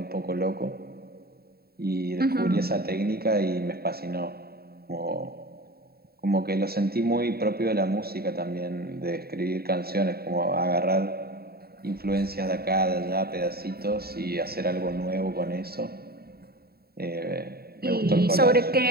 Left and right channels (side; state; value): left; late; 0.45 ms